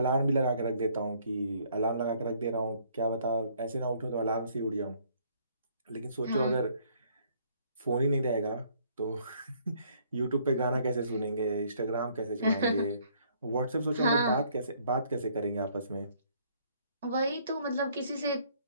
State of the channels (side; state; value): both; inverted; correlation -0.64